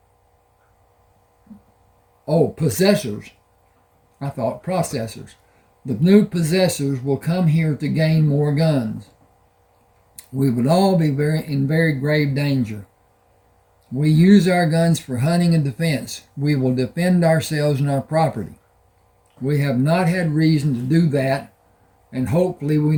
possessors. I thought processors. The new possessors will come here to gain more guns. We would all be in very grave danger. We use our guns for hunting and defense. We will defend ourselves and our property. We have not had reason to do that, and hopefully we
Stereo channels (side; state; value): both; identical; correlation 1.00